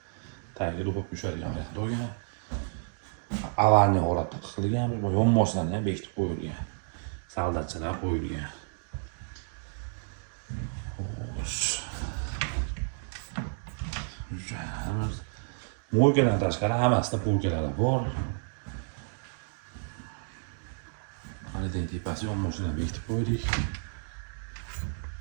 Tagiga do'pib tushadigan bo'lgan. Avarni holatda qilgan, bu yonboshlarni ham bekitib qo'yilgan. Soldatchalar qo'yilgan. Mo'lkadan tashqari hammasida polkalari bor. Mana tepasi yonboshlarni bekitib qo'ydik.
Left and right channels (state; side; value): silent; left; digital silence